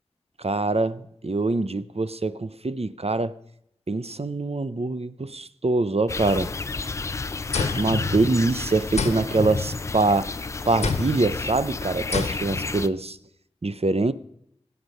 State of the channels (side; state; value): both; normal; correlation 0.63